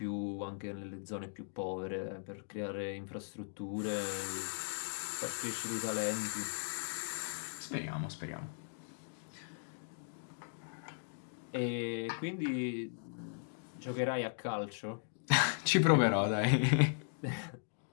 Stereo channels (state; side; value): silent; right; digital silence